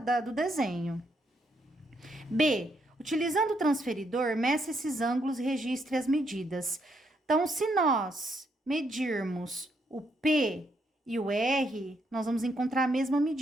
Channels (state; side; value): normal; both; correlation 0.76